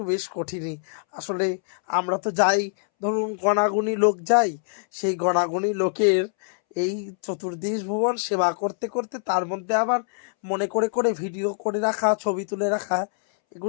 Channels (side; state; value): right; silent; 62 dB below the other